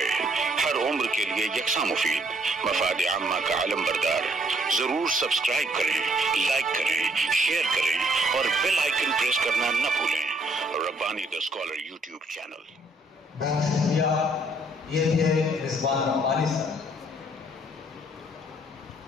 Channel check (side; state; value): both; normal; correlation 0.67